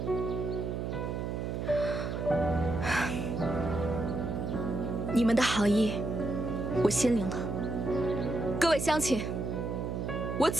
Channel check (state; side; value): noise; right; hum, 3 dB below the sound